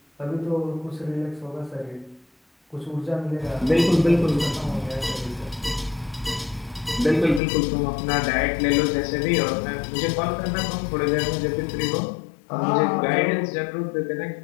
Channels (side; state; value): right; drops out; at 7.4 s